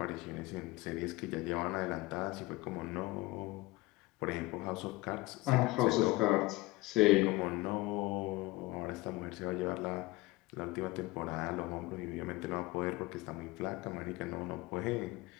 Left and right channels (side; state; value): right; quieter; 20.8 dB